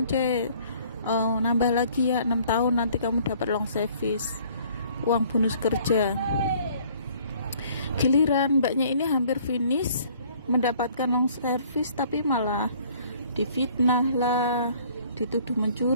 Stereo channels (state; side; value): inverted; both; correlation -0.57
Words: nambah lagi ya 6 tahun, nanti kamu dapat long service, uang bonus kerja. Giliran mbaknya ini hampir finish mendapatkan long service, tapi malah difitnah lah, dituduh